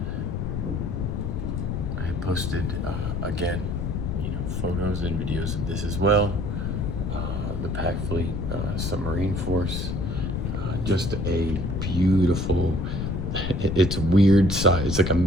I posted again, you know, photos and videos of this as well. The Pac Fleet Submarine Force, just a beautiful. It's weird size. It's like a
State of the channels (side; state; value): left; noise; rumble, 2 dB below the sound